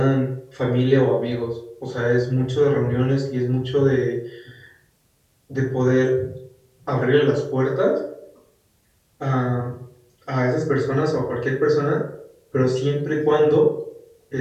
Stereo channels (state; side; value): identical; both; correlation 1.00